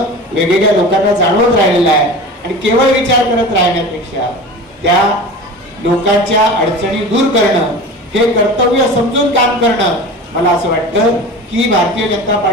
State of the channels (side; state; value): both; normal; correlation 0.34